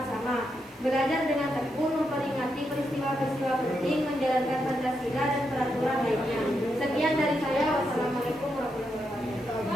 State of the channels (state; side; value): normal; both; correlation 0.83